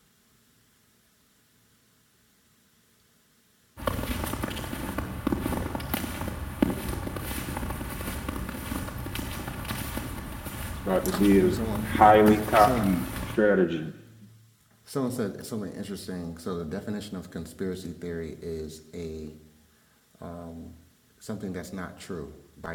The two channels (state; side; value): identical; both; correlation 1.00